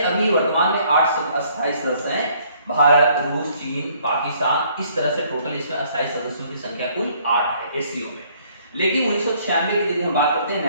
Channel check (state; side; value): inverted; both; correlation -0.63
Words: अभी वर्तमान में 8 अस्थायी सदस्य हैं, भारत, रूस, चीन, पाकिस्तान, इस तरह से टोटल इसमें अस्थायी सदस्यों की संख्या कुल 8 है एससीओ में। लेकिन 1996 की यदि हम बात करते हैं,